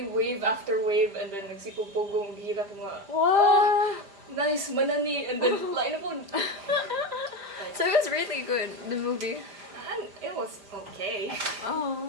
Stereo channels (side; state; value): left; late; 5.0 ms